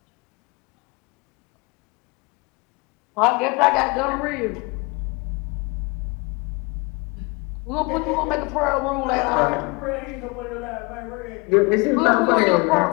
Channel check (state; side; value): quieter; right; 28.0 dB